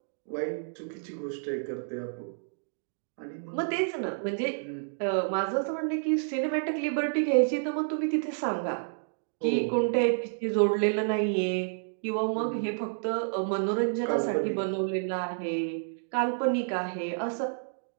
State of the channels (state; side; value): silent; left; digital silence